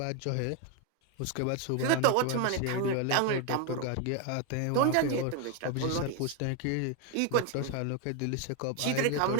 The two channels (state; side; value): different; both; correlation 0.01